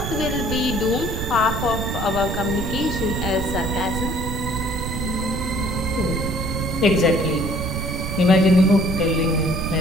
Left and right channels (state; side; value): noise; right; rumble, 4 dB below the sound